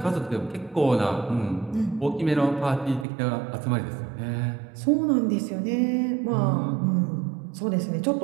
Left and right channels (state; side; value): drops out; left; at 3.1 s